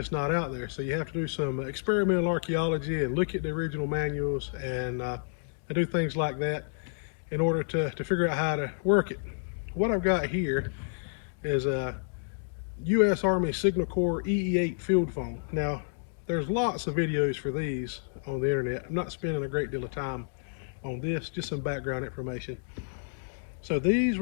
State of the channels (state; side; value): silent; right; digital silence